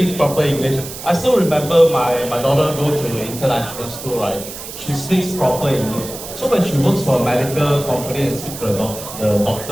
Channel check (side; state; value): right; noise; hiss, 11 dB below the sound